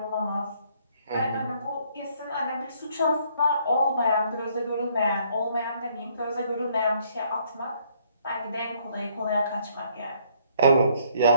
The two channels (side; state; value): both; inverted; correlation -0.66